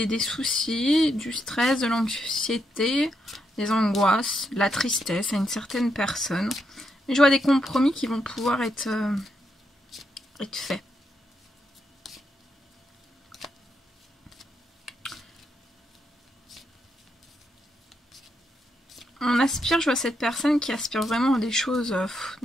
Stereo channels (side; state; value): both; normal; correlation 0.80